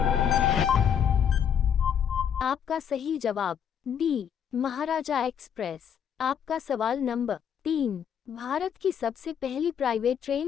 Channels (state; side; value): quieter; right; 8.3 dB